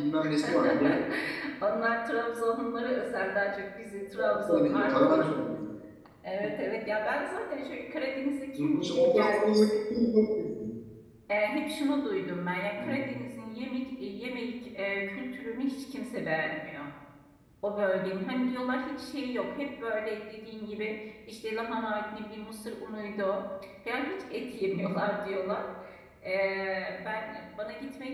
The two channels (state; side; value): identical; both; correlation 1.00